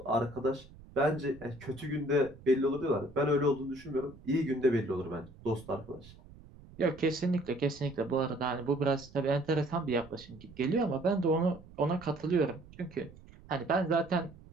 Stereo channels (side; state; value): right; noise; rumble, 21 dB below the sound